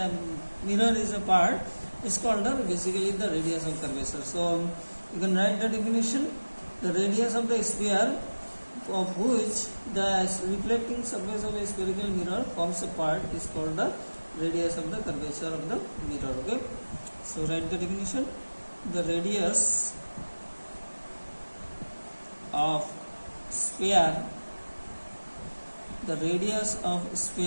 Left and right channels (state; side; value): inverted; both; correlation -1.00